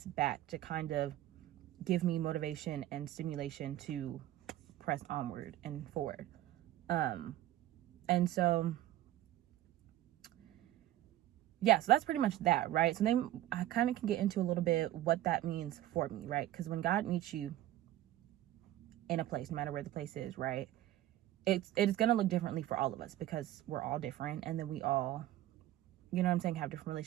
back, to kind of give me motivation and stimulation to press onward and forward. And so yeah, so that's pretty much that, right? So then I kind of can get into a little bit what that means for me, right? Because when God meets you in a place, no matter where the place is, right, it is going to look differently for all of us, because we're all different, and then we all, you know what I'm saying, have different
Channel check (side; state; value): left; quieter; 14.0 dB